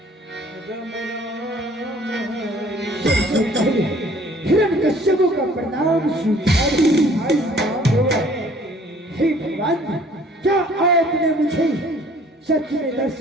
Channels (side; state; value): both; normal; correlation 0.55